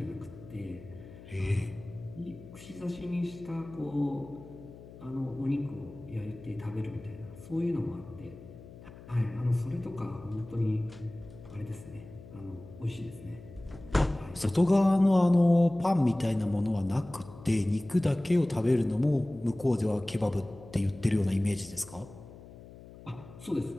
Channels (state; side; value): noise; left; hum, 18 dB below the sound